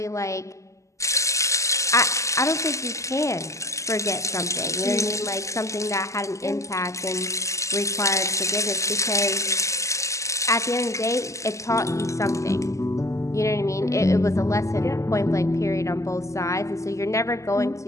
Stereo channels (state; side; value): late; right; 0.15 ms